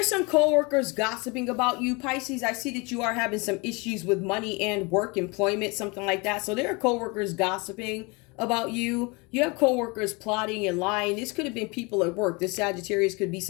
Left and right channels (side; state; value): right; quieter; 27.9 dB